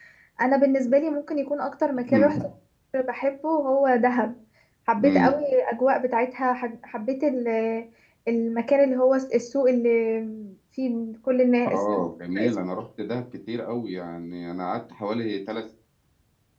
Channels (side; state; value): both; identical; correlation 1.00